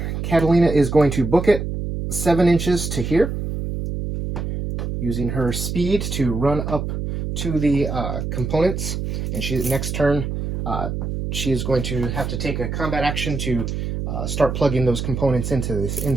Catalina is going to book it 7 inches to here, using her speed to run up to the components. And next turn, she is going to have to take a combat action to start plugging those components into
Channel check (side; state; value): right; noise; hum, 3 dB below the sound